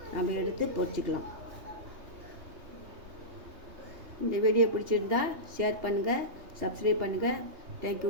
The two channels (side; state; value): left; late; 3.2 ms